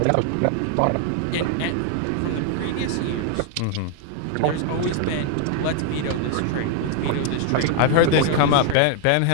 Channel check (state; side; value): different; both; correlation 0.00